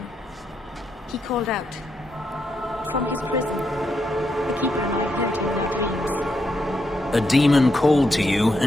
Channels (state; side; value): normal; both; correlation 0.81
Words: He called out. From his prison. The keeper and I heard him in our dreams. A demon called to you,